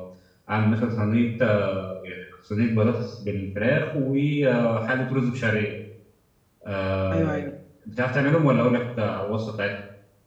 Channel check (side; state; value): both; identical; correlation 1.00